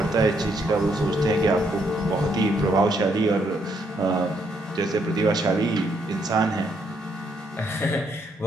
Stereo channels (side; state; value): both; normal; correlation 0.73